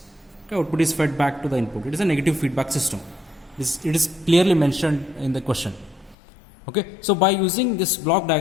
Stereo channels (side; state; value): right; drops out; at 6.2 s